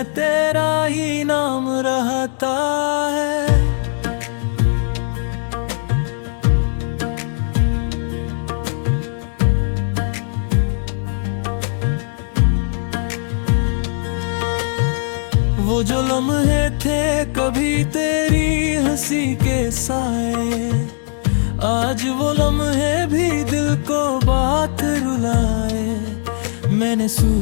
तेरा ही नाम रहता है। वो जो लम्हे थे कभी तेरी हंसी के साए, आज वो लम्हे भी दिल को बात रुलाए। मैंने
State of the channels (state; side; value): silent; right; digital silence